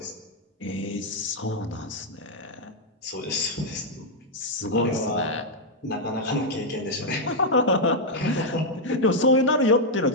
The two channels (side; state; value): both; normal; correlation -0.01